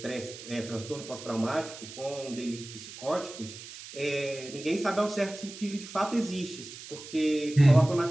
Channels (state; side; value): noise; right; hiss, 14 dB below the sound